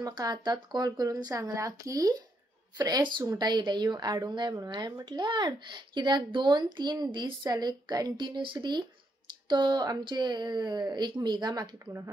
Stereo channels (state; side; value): normal; both; correlation 0.78